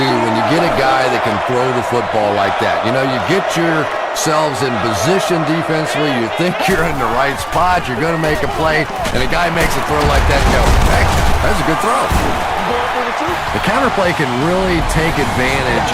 when you get a guy that can throw the football like that. You know, you get yourselves in position defensively, you think you're in the right spot, you're going to make a play, and a guy makes a throw like that and go, hey, that's a good throw. The counterplay can really take advantage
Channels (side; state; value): both; identical; correlation 1.00